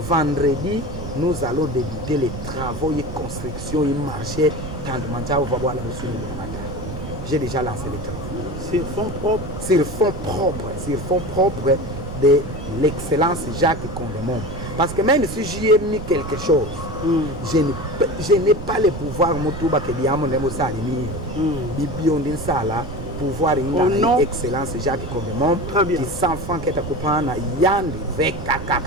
vendredi, nous allons débuter les travaux et construction et marché tant de mandat on va voir la notion de matin. J'ai déjà lancé les travaux. Sur fonds propres. Sur fonds propres de l'excellence Jacques Condemont. Parce que même si j'y ai mis quelque chose, je n'ai pas le pouvoir motuba que diamo ndemo salimi. Bibion din sala pouvoir une excellence Jacques Condemont qui s'enfant qui est à yandi veka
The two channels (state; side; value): noise; right; rumble, 8 dB below the sound